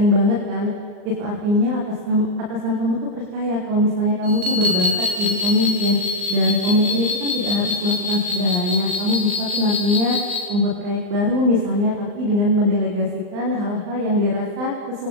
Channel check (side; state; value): left; late; 39 ms